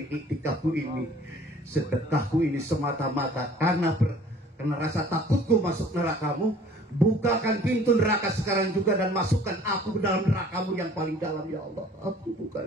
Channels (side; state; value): both; normal; correlation 0.52